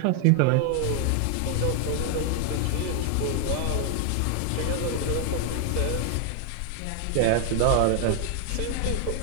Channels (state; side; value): different; both; correlation 0.00